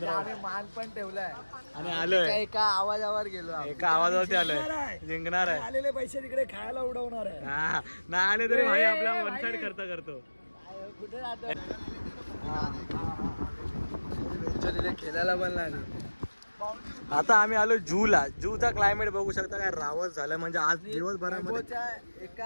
आम्ही मान पण ठेवलाय आणि आलोय. एका आवाजावर गेलो, एका आवाजावरती आलोय. जिंकणार आहे. आलेले पैसे तिकडे खायला उडवणार आहे. हा नाही आले तरी भाई आपला वन साइड खर्च करतो. कुठे राहतो खेळायला पण लागले. आता आम्ही आलो जूला. जूचा क्लायमेट बघू शकता काय रावत झालं. म्हणजे आज दिवसभरामध्ये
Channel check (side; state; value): both; inverted; correlation -1.00